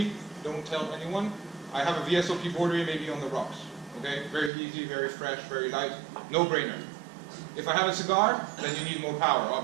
don't tell anyone, I have a VSOP Borderie maybe on the rocks. Okay, very easy, very fresh, very light, no-brainer. If I have a cigar, then you need more power,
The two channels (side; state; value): left; drops out; at 4.5 s